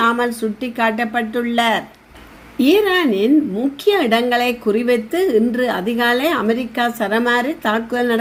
சுட்டி காட்டப்பட்டுள்ளார். ஈரானின் முக்கிய இடங்களை குறிவைத்து இன்று அதிகாலை அமெரிக்கா சரமாரி தாக்குதல்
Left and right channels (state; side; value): identical; both; correlation 1.00